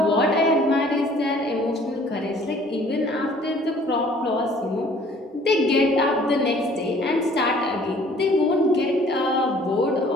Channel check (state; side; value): normal; both; correlation 0.55